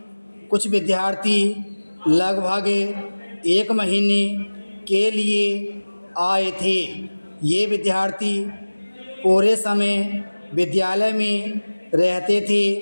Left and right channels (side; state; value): both; inverted; correlation -1.00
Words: कुछ विद्यार्थी लगभग 1 महीने के लिए आए थे। ये विद्यार्थी पूरे समय विद्यालय में रहते थे।